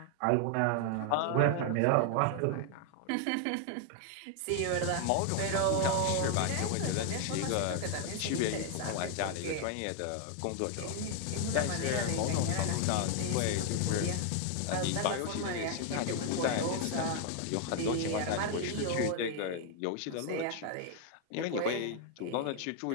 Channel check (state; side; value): different; both; correlation 0.00